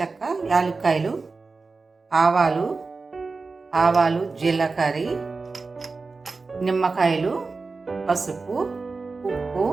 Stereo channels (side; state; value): left; quieter; 4.1 dB